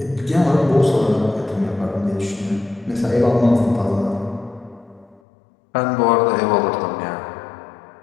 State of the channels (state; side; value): drops out; right; at 5.2 s